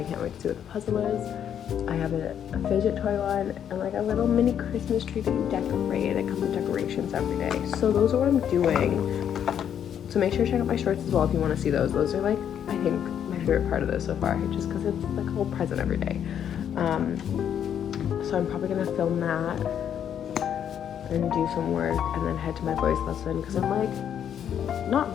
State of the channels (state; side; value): quieter; right; 9.1 dB